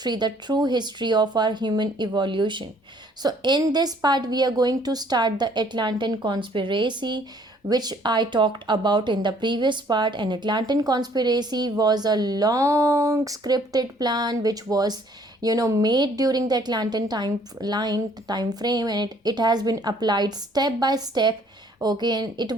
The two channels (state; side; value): normal; both; correlation 0.60